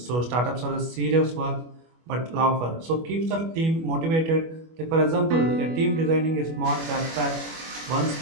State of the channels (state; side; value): late; left; 25 ms